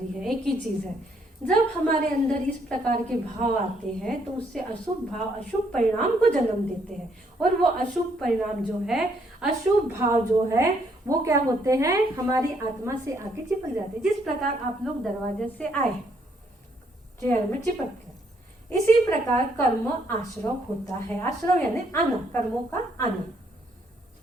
ही है, एक ही चीज है। जब हमारे अंदर इस प्रकार के भाव आते हैं तो उससे अशुभ भाव अशुभ परिणाम को जन्म देते हैं, और वो अशुभ परिणाम जो है, अशुभ भाव जो है, वो क्या होते हैं? हमारी आत्मा से आके चिपक जाते हैं। जिस प्रकार आप लोग दरवाजे से आए, चेयर में चिपक गए, इसी प्रकार कर्म आश्रव होता है। आश्रव यानी आना, कर्मों का आना।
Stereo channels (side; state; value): both; normal; correlation 0.70